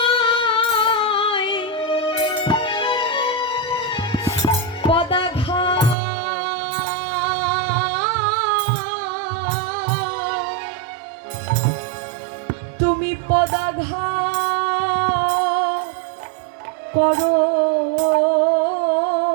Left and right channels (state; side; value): drops out; left; at 6.0 s